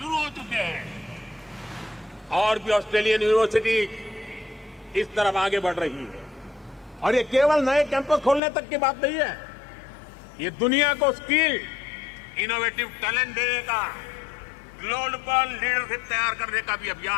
हो चुके हैं और भी ऑस्ट्रेलियन यूनिवर्सिटी इस तरफ आगे बढ़ रही है। और ये केवल नए कैंपस खोलने तक की बात नहीं है, ये दुनिया को स्किल, इनोवेटिव टैलेंट देने का, ग्लोबल लीडरशिप तैयार करने का भी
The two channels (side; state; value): right; drops out; at 8.4 s